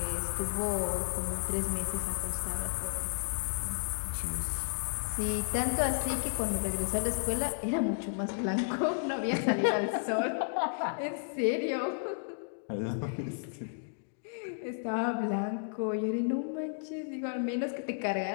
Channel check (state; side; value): silent; right; digital silence